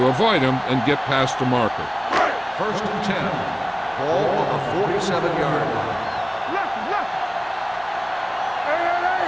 avoid him and get past the marker. 1st and 10. Ball on the 47-yard line. Left.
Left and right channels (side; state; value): both; identical; correlation 1.00